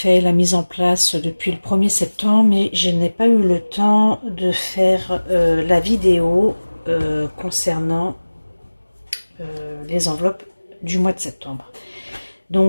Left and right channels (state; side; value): inverted; both; correlation -1.00